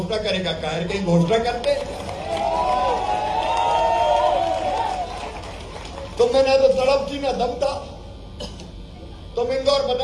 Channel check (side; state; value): both; identical; correlation 1.00